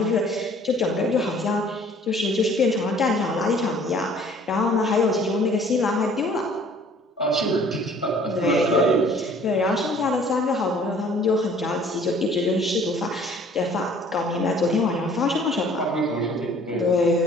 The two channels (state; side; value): normal; both; correlation 0.54